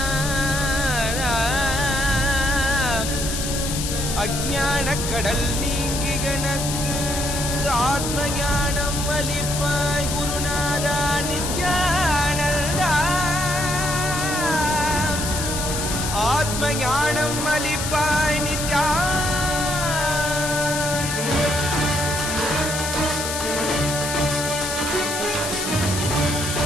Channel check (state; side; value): noise; left; hiss, 4 dB below the sound